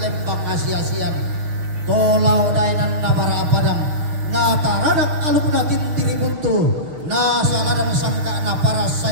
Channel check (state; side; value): late; left; 6.8 ms